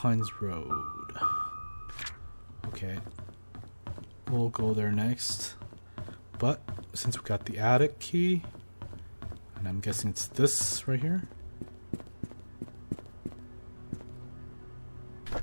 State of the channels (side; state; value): both; inverted; correlation -1.00